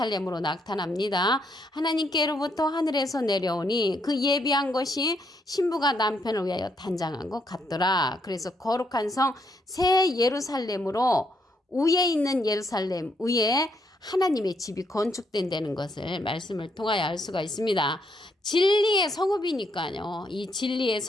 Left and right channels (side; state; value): both; normal; correlation 0.75